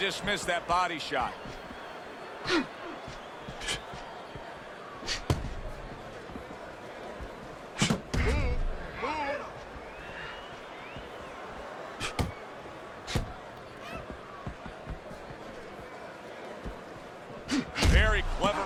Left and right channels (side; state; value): both; identical; correlation 1.00